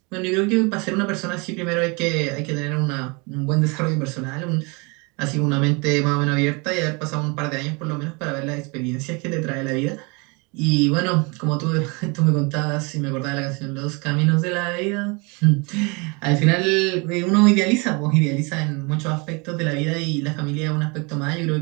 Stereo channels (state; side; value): quieter; left; 29.6 dB